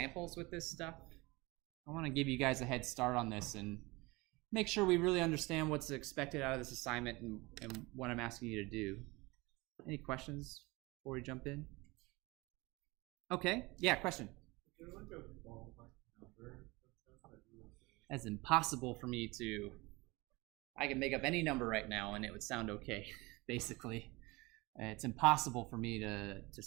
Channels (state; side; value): quieter; left; 23.5 dB